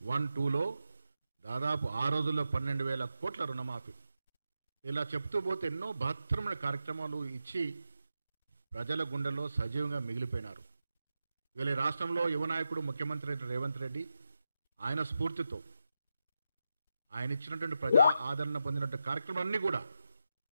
1-2లో దాదాపు ఆ రోజుల్లో 12,000 కోట్ల రుణమాఫీ. ఇలా చెప్తూ పోతే ఎన్నో బహత్తరమైన కార్యక్రమాలు ఇచ్చి ప్రజల గుండెల్లో సజీవంగా మిగిలిపోయినారు. ఇవాళ ఈ రాష్ట్రంలో యువనాయకుడు ముఖ్యమంత్రి రేవంత్ రెడ్డి ఆయన స్ఫూర్తితో ఆయన ఇచ్చినటువంటి ప్రజా ఆదరణ పొందినటువంటి కార్యక్రమాలన్నీ కూడా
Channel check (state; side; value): inverted; both; correlation -0.89